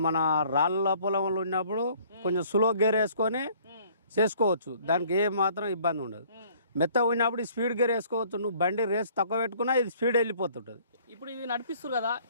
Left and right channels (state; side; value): inverted; both; correlation -0.57